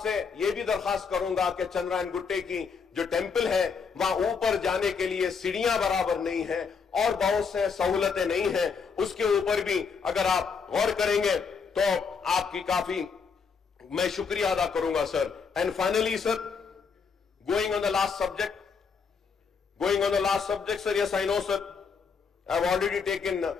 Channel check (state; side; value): quieter; right; 5.7 dB